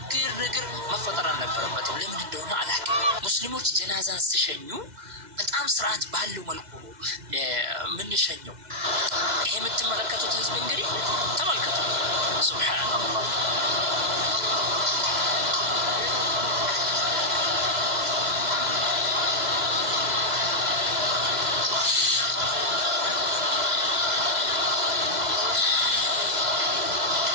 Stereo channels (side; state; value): left; late; 2.0 ms